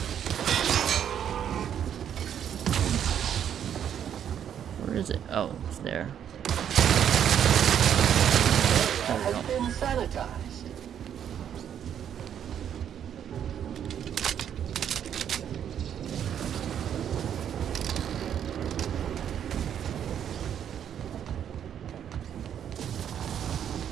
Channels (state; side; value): quieter; left; 9.2 dB